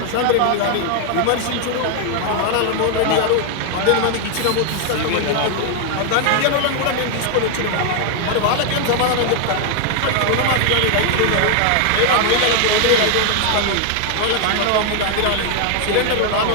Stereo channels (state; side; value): different; both; correlation 0.00